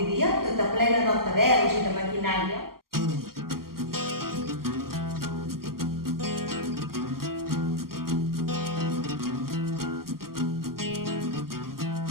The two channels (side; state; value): left; late; 0.92 ms